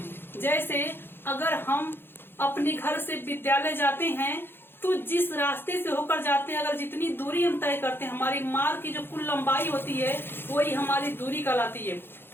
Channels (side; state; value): right; late; 0.10 ms